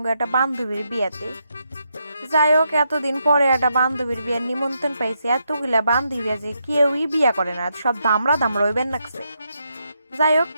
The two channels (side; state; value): both; inverted; correlation -0.81